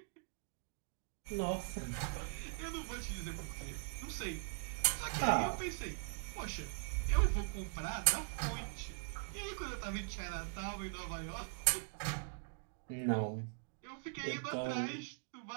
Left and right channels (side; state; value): left; silent; digital silence